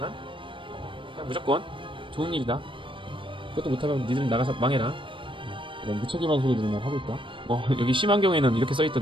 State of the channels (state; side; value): late; left; 0.25 ms